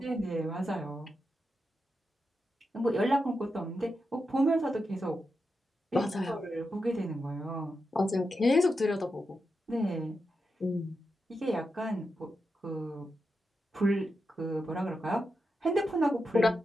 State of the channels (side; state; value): both; normal; correlation 0.87